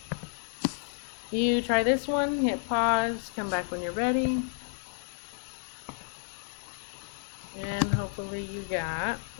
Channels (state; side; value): silent; right; 57 dB below the other